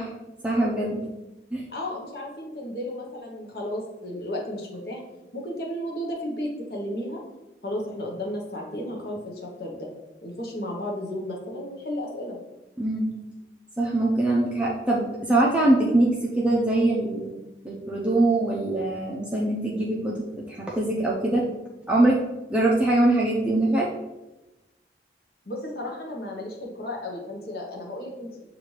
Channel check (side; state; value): both; normal; correlation 0.70